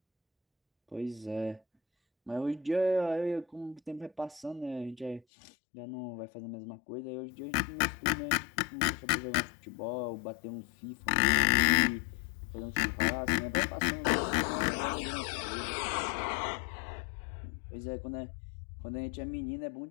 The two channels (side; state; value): right; drops out; at 5.2 s